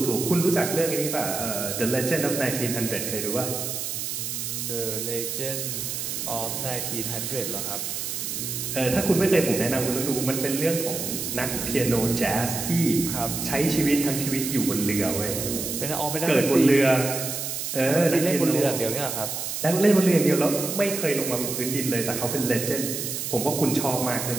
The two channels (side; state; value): right; noise; hiss, 4 dB below the sound